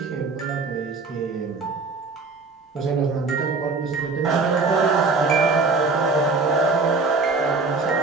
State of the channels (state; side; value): quieter; left; 4.0 dB